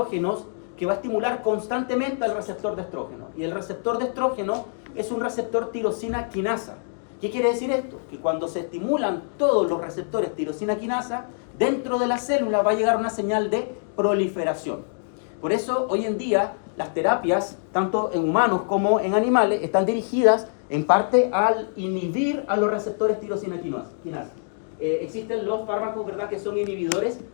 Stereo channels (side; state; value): right; silent; digital silence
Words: que va a estimular constantemente al receptor de estrógeno. Y el receptor de estrógeno es un receptor tirosina quinasa. ¿Qué quiere decir esto? Que cuando se estimulan todos los receptores tirosina quinasa, dentro de la célula va a llegar una señal de proliferación. Por eso, hoy en día, las terapias, tanto en humanos como en animales, están dirigidas en parte al inhibir a los receptores tirosina quinasa. Existen los fármacos, ¿verdad?, que son inhibidores